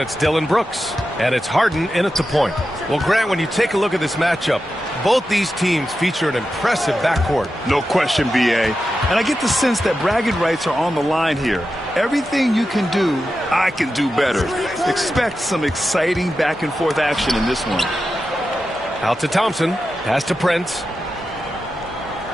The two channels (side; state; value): both; normal; correlation 0.91